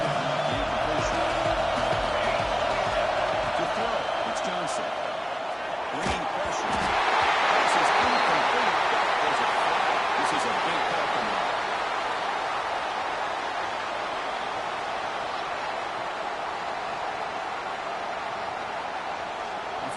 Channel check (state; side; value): identical; both; correlation 1.00